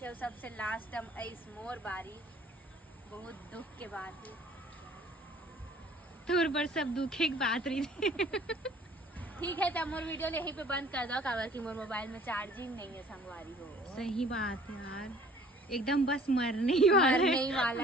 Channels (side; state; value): both; normal; correlation 0.53